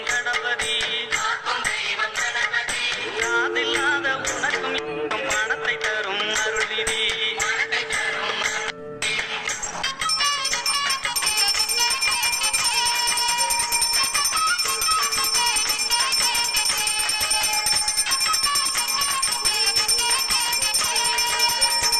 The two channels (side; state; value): both; identical; correlation 1.00